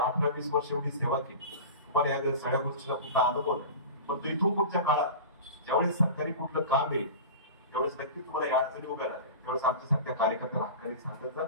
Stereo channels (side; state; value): both; inverted; correlation -0.33